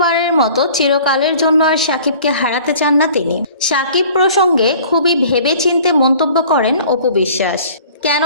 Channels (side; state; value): both; inverted; correlation -0.49